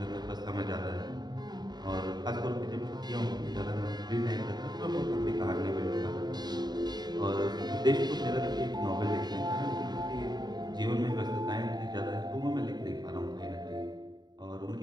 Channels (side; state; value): left; late; 0.20 ms